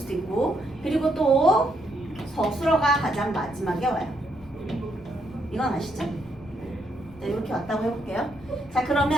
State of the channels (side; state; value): left; noise; rumble, 22 dB below the sound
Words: 있고 그리고 또 서술어가 가장 마지막에 와요. 이건 아시죠? 네, 이렇게 왔다고 해볼게요. 자